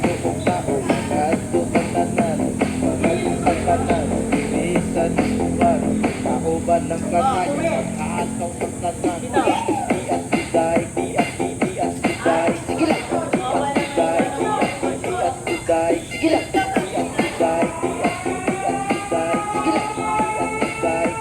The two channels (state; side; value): identical; both; correlation 1.00